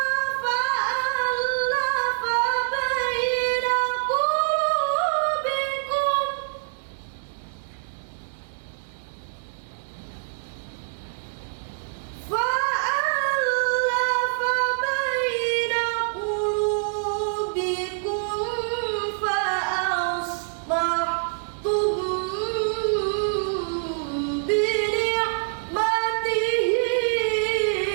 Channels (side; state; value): left; silent; 61 dB below the other